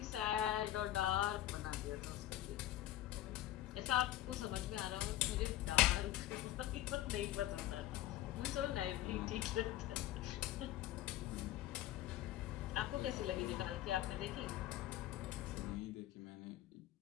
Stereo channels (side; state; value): right; quieter; 13.8 dB